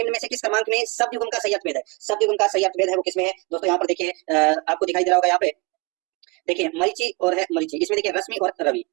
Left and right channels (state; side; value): quieter; left; 27.6 dB